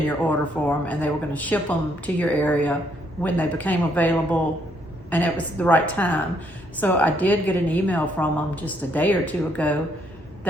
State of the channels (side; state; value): both; normal; correlation 0.71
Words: your order form, and they were going to ship them to your area when they became available and it was the right time. So I did get an email from them just a day or 2 ago